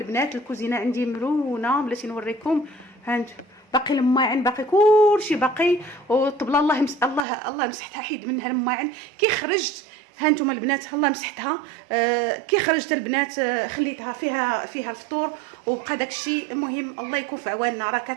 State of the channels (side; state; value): left; drops out; at 7.2 s